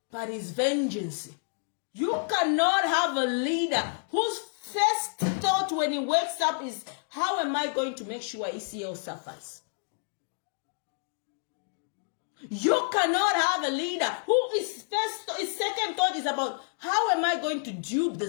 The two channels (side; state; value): right; silent; 59 dB below the other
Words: But his vengeance. You cannot have a leader whose first thought when he wakes up is, how am I going to make sure ECL suffers? You cannot have a leader who his second thought is about, how am I going to dupe the